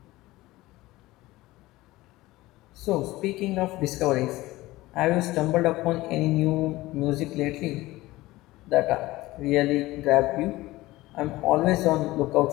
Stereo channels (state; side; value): quieter; right; 18.4 dB